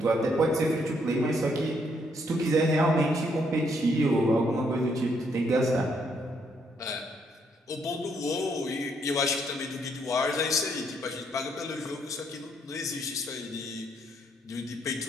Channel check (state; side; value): normal; both; correlation 0.72